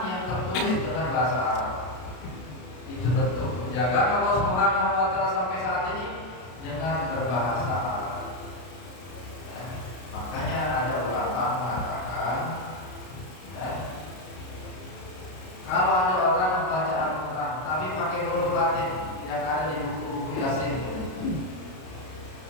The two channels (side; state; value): right; late; 33 ms